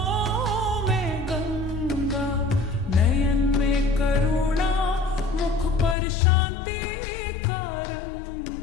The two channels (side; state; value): right; drops out; at 6.0 s